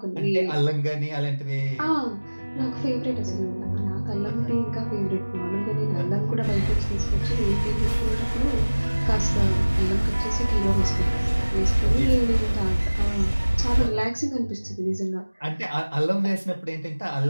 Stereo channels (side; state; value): both; inverted; correlation -1.00